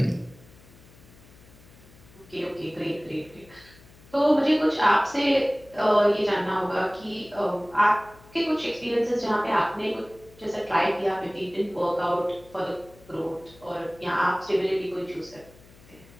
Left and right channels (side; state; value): left; noise; hum, 24 dB below the sound